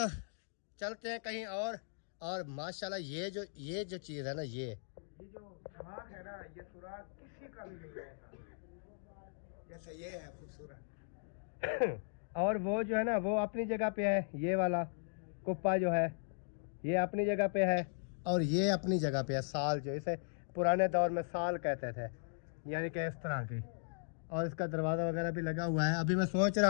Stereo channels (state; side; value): silent; right; digital silence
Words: चलते हैं कहीं और माशाल्लाह ये जो चीज़ है ना, ये जो सुराग है ना, ये सुराग किसी का भी नहीं है जैसे ये है खूबसूरत। और वो जो है ना वो अपनी जगह पे है। ये वाला कुप्पा जो है ये अपनी जगह पे है, और ये अपनी जगह पे है। साल जो इसे पुराने दौर में साल कहते थे, यानी कि इस तरह की। और इसका दरवाज़ा वगैरह भी लगा हुआ है। अभी मैं सोच